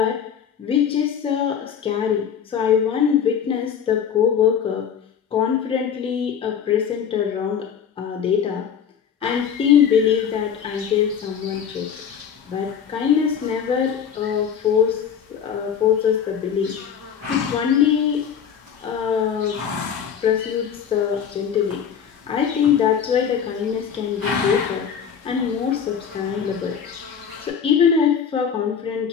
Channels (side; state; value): right; quieter; 7.7 dB